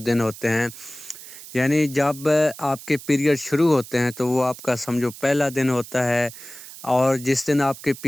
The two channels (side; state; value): right; noise; hiss, 15 dB below the sound